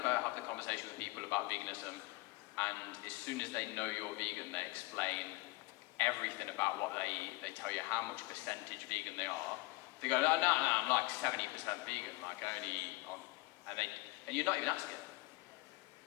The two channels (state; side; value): quieter; right; 22.8 dB